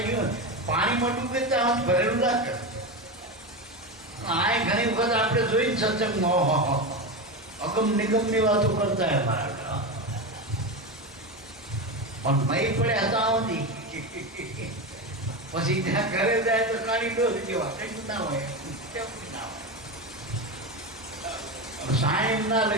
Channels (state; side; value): normal; both; correlation 0.18